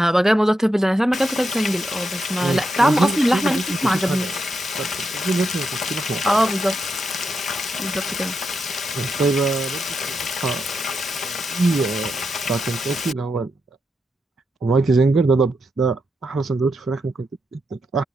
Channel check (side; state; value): both; normal; correlation 0.84